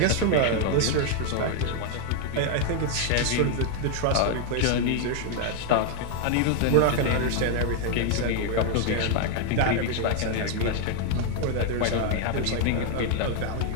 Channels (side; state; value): both; different; correlation 0.00